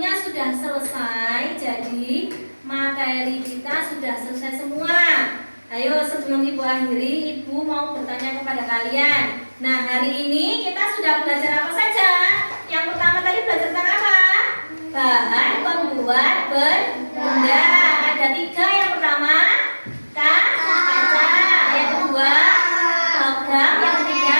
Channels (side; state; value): both; inverted; correlation -1.00